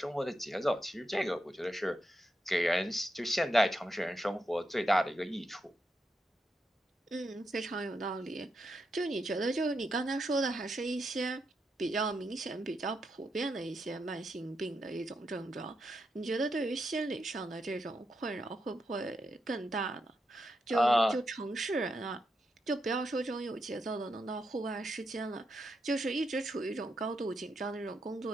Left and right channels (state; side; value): normal; both; correlation 0.83